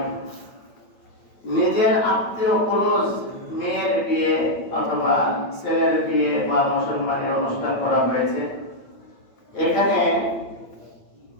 নিজের আত্মীয় ক্লোজ মেয়ের বিয়ে অথবা ছেলের বিয়ে বা মুসলমানের অনুষ্ঠান করা হয়েছে, এখানে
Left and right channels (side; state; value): right; late; 9.0 ms